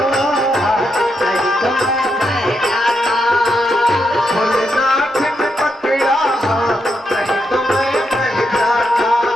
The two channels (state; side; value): normal; both; correlation 0.82